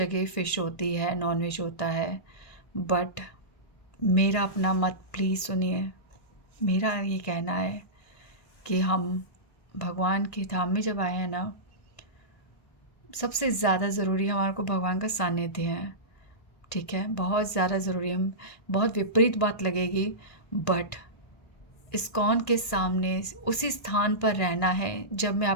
फ़िश होती है, नॉनवेज होता है, बट मेरा अपना मत प्लीज़ सुनिए। मेरा ये कहना है कि हम भगवान के धाम में जब आए हैं ना, सबसे ज़्यादा ज़रूरी हमारे को भगवान का सानिध्य है। ठीक है, बहुत ज़्यादा ज़रूरी है। बहुत विपरीत बात लगेगी, बट इस्कॉन के सामने उसी स्थान पर रहना है। जब मैं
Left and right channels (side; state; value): right; late; 1.8 ms